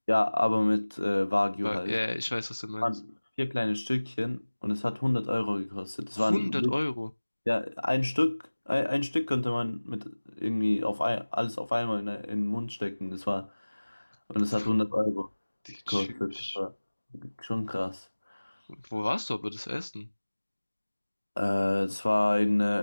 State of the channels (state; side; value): inverted; both; correlation -1.00